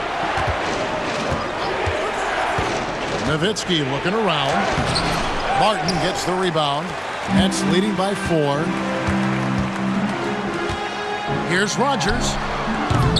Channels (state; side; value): identical; both; correlation 1.00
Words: Nowitzki looking around. Martin gets the rebound. Nets leading by 4. Here's Rogers.